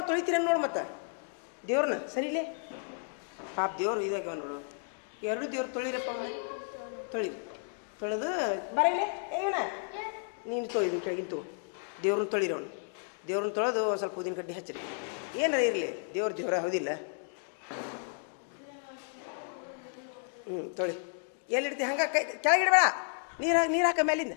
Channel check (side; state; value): right; silent; 56 dB below the other